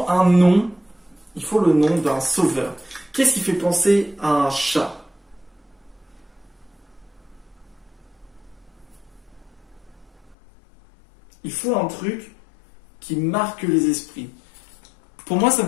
un nom. Il faut le nom d'un sauveur. Qu'est-ce qui fait penser à un chat? Il faut un truc qui marque les esprits. Pour moi, ça me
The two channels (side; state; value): right; drops out; at 10.4 s